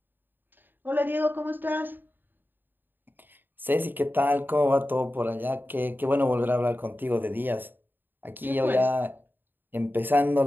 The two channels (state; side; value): late; left; 0.093 ms